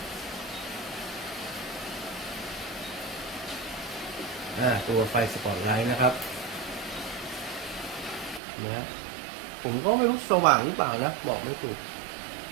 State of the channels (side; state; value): left; drops out; at 8.4 s